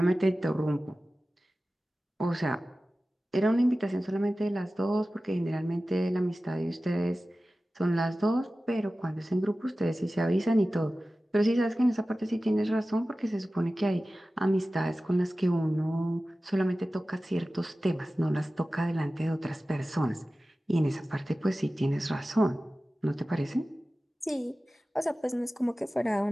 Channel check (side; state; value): both; normal; correlation 0.96